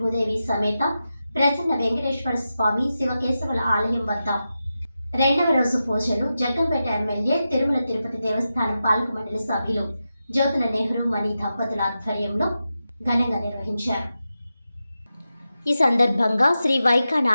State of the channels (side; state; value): both; inverted; correlation -0.90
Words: సమేత ప్రసన్న వెంకటేశ్వర స్వామి శివకేశవుల ఆలయం వద్ద రెండవ రోజు పూజలు జగ్గంపేట ఎమ్మెల్యే తిరుమల తిరుపతి దేవస్థానం పాలక మండలి సభ్యులు జ్యోతుల నెహ్రూ మణి దంపతుల ఆధ్వర్యంలో ఘనంగా నిర్వహించారు. ఈ సందర్భంగా శ్రీ వైఖాన